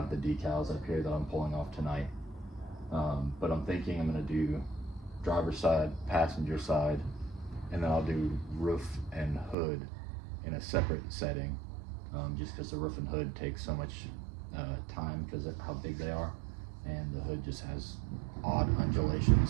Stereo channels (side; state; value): left; drops out; at 9.6 s